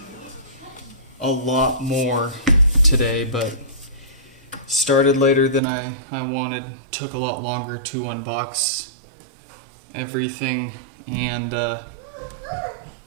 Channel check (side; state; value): left; drops out; at 5.6 s